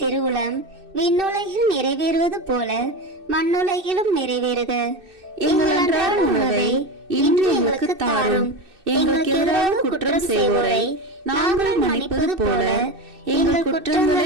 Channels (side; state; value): left; late; 2.6 ms